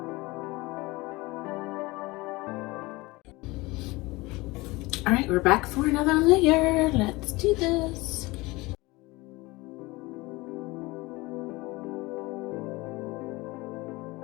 All right, we're back for another layer. Let's do this.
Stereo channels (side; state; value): right; quieter; 22.3 dB